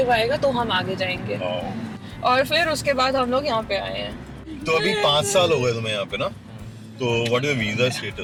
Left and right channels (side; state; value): both; identical; correlation 1.00